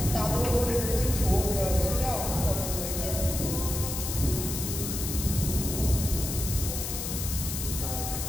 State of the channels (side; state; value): left; noise; hiss, 4 dB below the sound